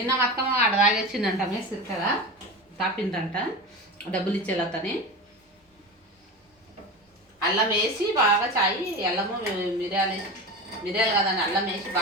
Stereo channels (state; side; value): normal; both; correlation 0.27